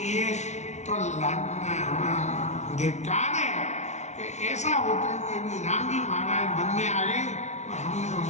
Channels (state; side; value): late; right; 0.33 ms